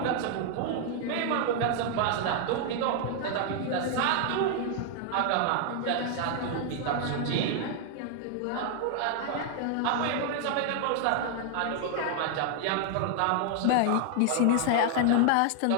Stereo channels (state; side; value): different; both; correlation 0.00